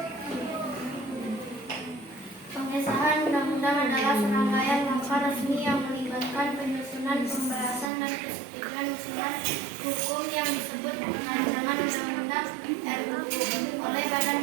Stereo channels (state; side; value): drops out; left; at 7.9 s